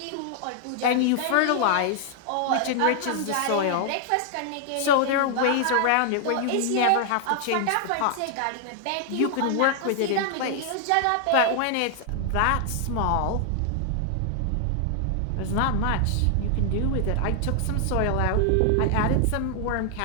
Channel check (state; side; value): different; both; correlation 0.00